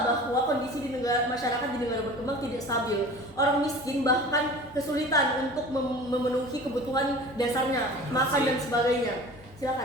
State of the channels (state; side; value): normal; both; correlation 0.40